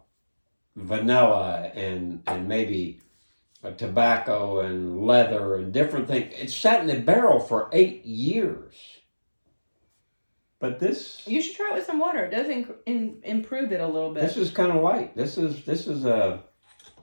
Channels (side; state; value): both; inverted; correlation -1.00